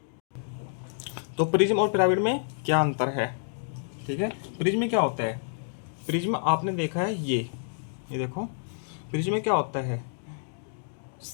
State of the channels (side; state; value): right; silent; digital silence